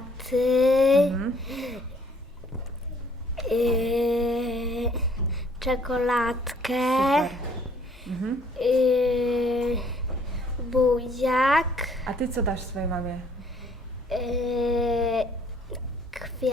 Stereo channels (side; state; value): both; normal; correlation 0.61